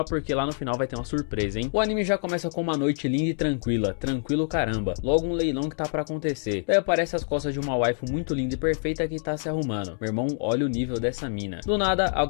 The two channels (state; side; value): silent; right; 61 dB below the other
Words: porque lá no final vai ter uma surpresa, hein? O anime já começa com uma noite linda e tranquila. Tranquilo caramba. Logo um leilão que tá pra acontecer. Daí aparece as costas de uma waifu muito linda e perfeita que tá se arrumando. Meu irmão, olha o nível dessa mina. Do nada,